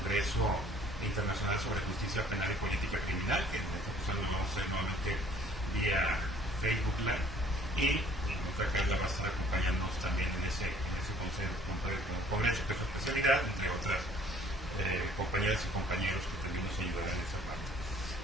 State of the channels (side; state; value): both; normal; correlation 0.56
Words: Internacional sobre Justicia Penal y Política Criminal, que en esta ocasión lo vamos a hacer nuevamente vía Facebook Live, y nuestra Carla va a estar acompañándonos también en ese congreso que es su especialidad, entre otras compañeras y compañeros que también nos ayudarán en esa parte.